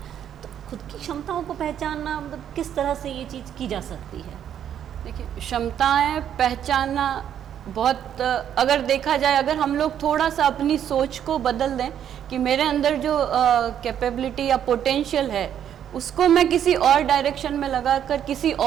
तो खुद की क्षमताओं को पहचानना, मतलब किस तरह से ये चीज़ की जा सकती है? देखिए, क्षमताएं पहचानना बहुत, अगर देखा जाए, अगर हम लोग थोड़ा सा अपनी सोच को बदल दें कि मेरे अंदर जो कैपेबिलिटी या पोटेंशियल है उसको मैं किसी और डायरेक्शन में लगाकर किसी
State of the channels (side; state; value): left; quieter; 9.6 dB